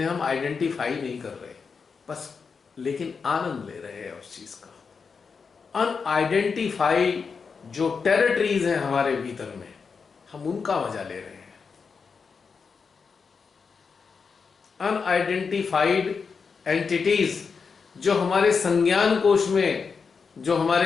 हम आइडेंटिफाई नहीं कर रहे, बस लेकिन आनंद ले रहे हैं उस चीज का। अनआइडेंटिफाइड जो टेरिटरीज हैं हमारे भीतर में, हम उनका मजा ले रहे हैं। अनआइडेंटिफाइड एंटिटीज जो हमारे संज्ञान कोश में, जो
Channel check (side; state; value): right; quieter; 5.4 dB